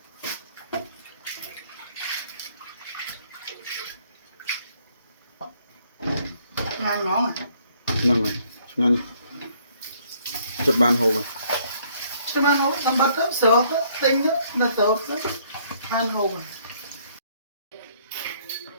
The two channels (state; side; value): inverted; both; correlation -0.64